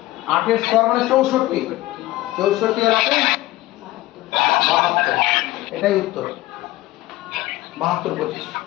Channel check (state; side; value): quieter; right; 17.6 dB